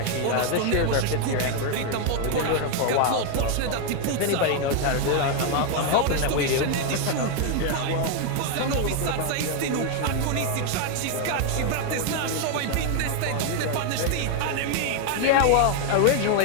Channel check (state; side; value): different; both; correlation 0.01